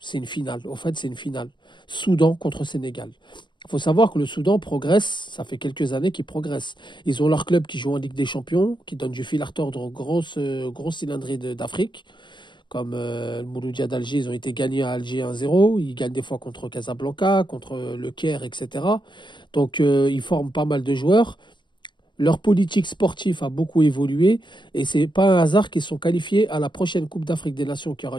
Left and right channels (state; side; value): late; right; 0.22 ms